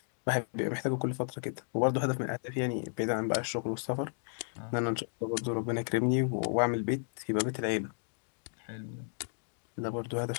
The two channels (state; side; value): silent; right; digital silence